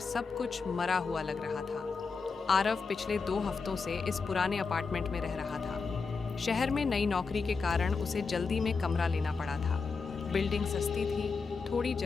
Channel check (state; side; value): quieter; right; 4.8 dB